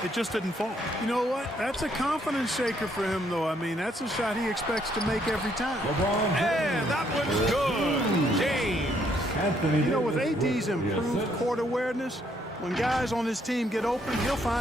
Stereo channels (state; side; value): normal; both; correlation 0.70